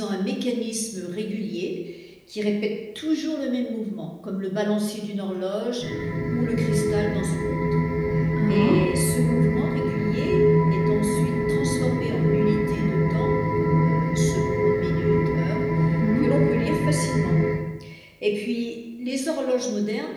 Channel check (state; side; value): identical; both; correlation 1.00